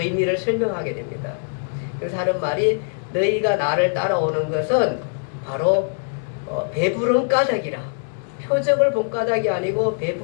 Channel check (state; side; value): silent; right; digital silence